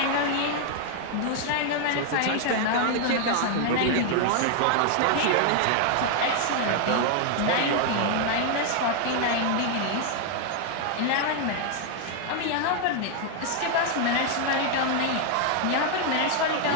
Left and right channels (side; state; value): both; different; correlation 0.00